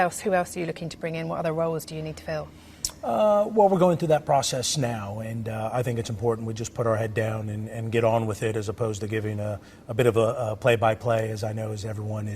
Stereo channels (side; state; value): both; identical; correlation 1.00